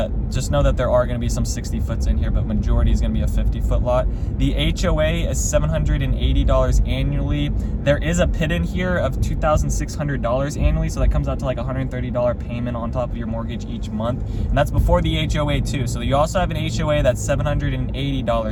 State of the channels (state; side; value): identical; both; correlation 1.00